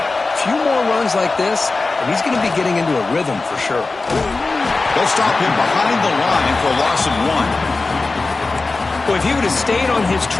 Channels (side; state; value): right; quieter; 3.6 dB